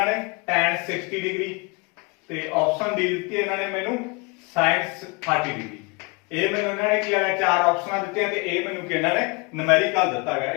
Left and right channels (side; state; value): right; quieter; 28.7 dB